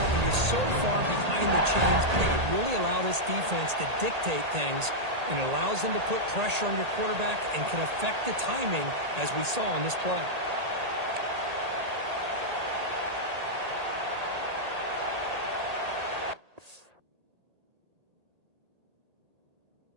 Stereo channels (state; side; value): late; left; 1.8 ms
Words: you're so far behind the chains, they could really allow this defense to dictate things, and it allows them to put pressure on your quarterback and can affect the timing, as we saw on this play.